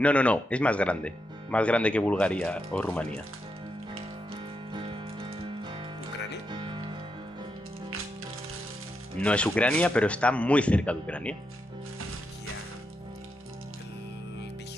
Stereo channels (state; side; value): normal; both; correlation 0.84